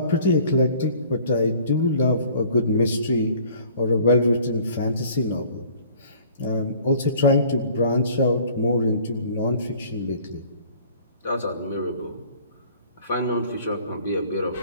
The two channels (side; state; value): both; inverted; correlation -0.52